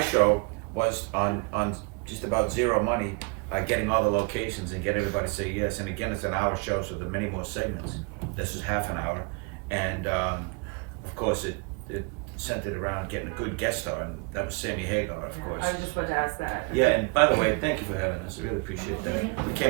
show was on just about zero money, getting all the locations and get everybody to say yes. And again, it's an hour show, so there are many more segments. This is half an hour. And of course, it centered around getting a good guest star, and that was Sammy Hagar, of course. I was just about to ask that. Yeah, and by the way, thank you for having us. I really appreciate that. We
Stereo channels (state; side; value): quieter; left; 32.1 dB